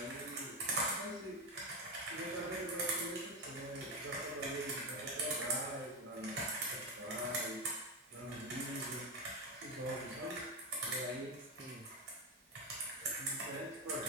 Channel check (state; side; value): normal; both; correlation 0.12